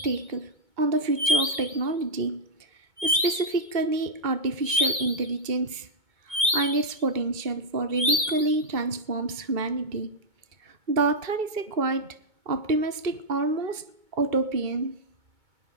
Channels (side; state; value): left; late; 2.2 ms